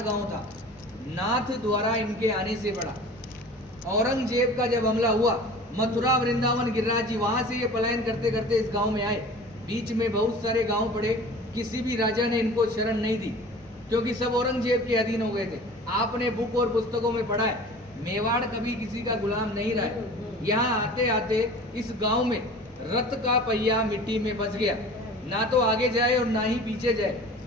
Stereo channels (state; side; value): normal; both; correlation 0.42